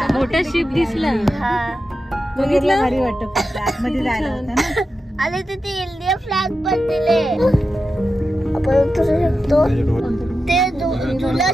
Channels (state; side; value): normal; both; correlation 0.90